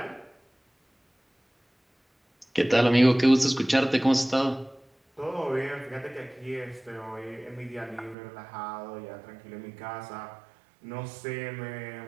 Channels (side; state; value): left; drops out; at 8.2 s